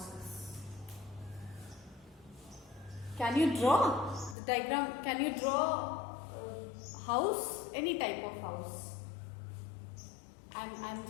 Can you draw the diagram? Can you draw house? Any type of house? I'm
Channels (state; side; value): drops out; right; at 4.4 s